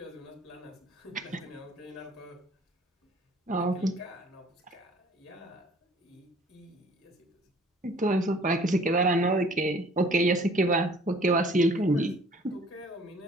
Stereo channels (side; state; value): both; normal; correlation 0.54